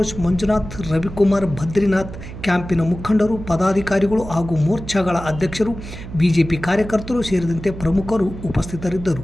ಮಂಜುನಾಥ್, ರವಿಕುಮಾರ್, ಬದ್ರಿನಾಥ್, ಕ್ಯಾಂಪಿನ ಮುಖಂಡರು, ಪದಾಧಿಕಾರಿಗಳು ಹಾಗೂ ಮೋರ್ಚಾಗಳ ಅಧ್ಯಕ್ಷರು, ಬಿಜೆಪಿ ಕಾರ್ಯಕರ್ತರು ಸೇರಿದಂತೆ ಪ್ರಮುಖರು ಉಪಸ್ಥಿತರಿದ್ದರು.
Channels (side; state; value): right; noise; hum, 12 dB below the sound